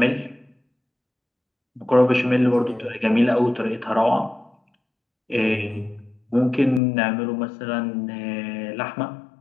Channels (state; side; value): drops out; right; at 6.8 s